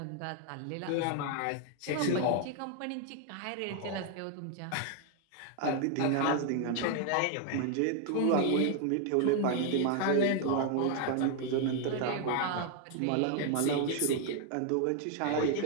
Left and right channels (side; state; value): both; different; correlation 0.00